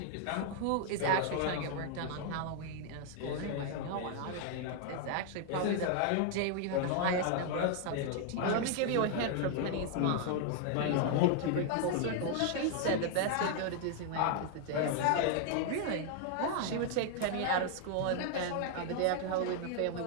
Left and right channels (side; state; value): both; different; correlation 0.00